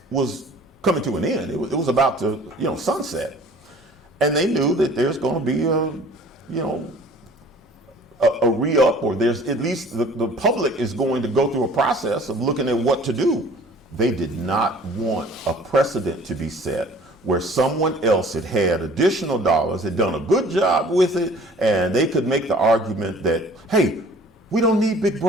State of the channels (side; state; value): both; normal; correlation 0.49